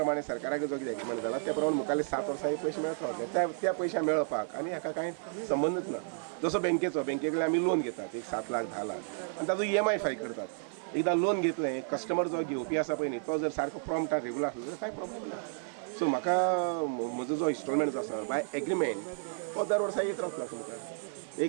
सरकाराक जो कितें एग्रीमेंट जाला त्या प्रमाणे मुखाल्ले 7 वर्सां पयशे मेळत रावले. त्या पयशे मेळपाक आनी हाका कांय संबंदच ना. जसो बँके कडेन आमी लोन घेतात एक 7 लाख 10 लाख आनी ताजो EMI फारीक करतात. एकदां लोन घेतलें कस्टमर जो घेवपी आसा पळय न्ही तो जर सारको प्रॉम्प्ट आनी रेगुलर आसलो जाल्यार कांय प्रॉब्लेम ना. सो म्हाका म्हजो जो इन्स्टॉलमेंट जो आसा बाय एग्रीमेंट तो दर वर्सा येत रावतलो तुमकां.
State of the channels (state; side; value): silent; left; digital silence